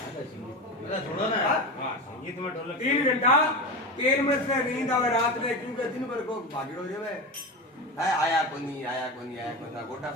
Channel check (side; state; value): both; normal; correlation 0.23